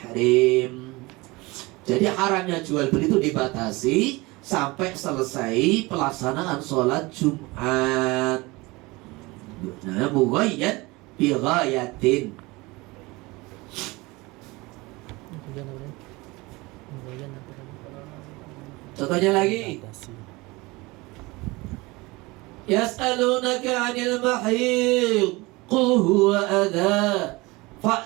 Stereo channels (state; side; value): quieter; left; 23.2 dB